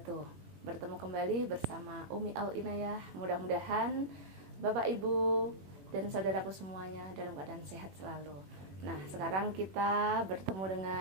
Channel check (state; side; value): late; left; 21 ms